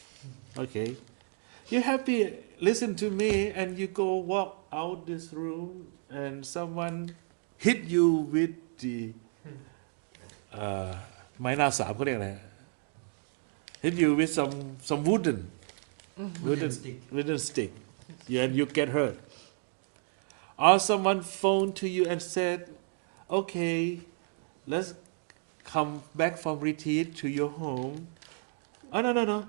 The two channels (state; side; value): silent; left; 57 dB below the other